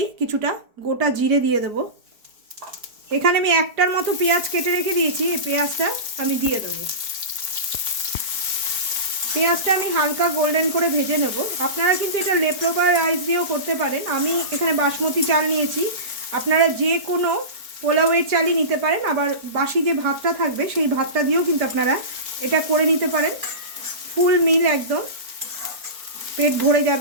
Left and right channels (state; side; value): late; left; 4.5 ms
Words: কিছুটা গোটা জিরে দিয়ে দেব। এখানে আমি একটার মতো পেঁয়াজ কেটে রেখে দিয়েছি, এই পেঁয়াজটা আমি দিয়ে দেবো। পেঁয়াজটা আমি হালকা গোল্ডেন করে ভেজে নেব। আপনারা কিন্তু এটা লেফট-ওভার রাইস দিয়েও করতে পারেন। আমি এখানে বাসমতি চাল নিয়েছি, আপনারা যে কোনো পোলাওয়ের চালই নিতে পারেন। আবার বাসি যে ভাতটা থাকবে সেই ভাতটা দিয়েও কিন্তু আপনারা এটা করে নিতে পারেন। ফুল মিল, একদম পেট ভরে